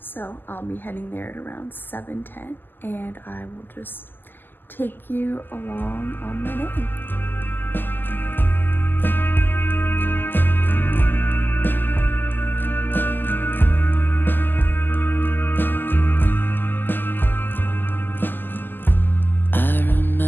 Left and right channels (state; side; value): late; right; 0.091 ms